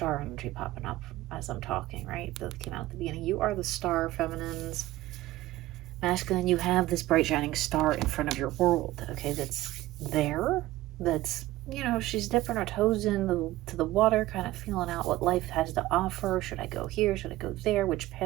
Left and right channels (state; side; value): quieter; left; 16.6 dB